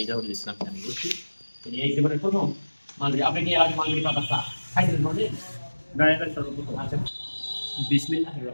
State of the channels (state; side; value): inverted; both; correlation -1.00